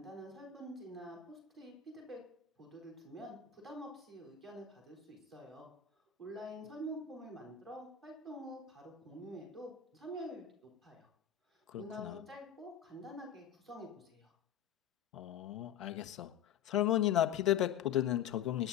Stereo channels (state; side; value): quieter; right; 9.3 dB